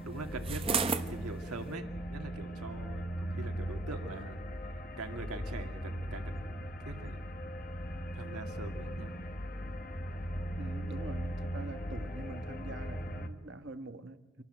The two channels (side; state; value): both; normal; correlation 0.67